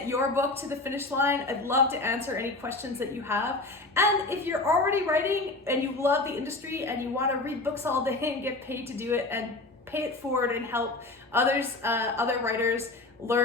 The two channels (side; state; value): right; quieter; 3.1 dB